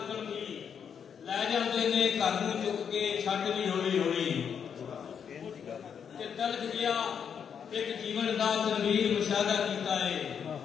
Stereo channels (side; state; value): right; quieter; 7.5 dB